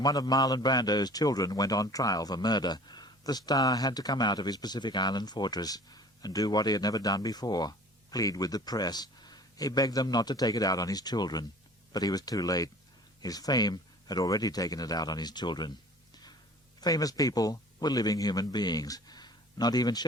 one of Marlon Brando's children went on trial for murder, the star had to come out of his Pacific Island fortress and do what he had never done before, plead with the press. He begged them not to take it out on his children, but he was too late. His fame had already taken it out on his children. Famous people were living human beings. Not even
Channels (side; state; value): both; normal; correlation 0.46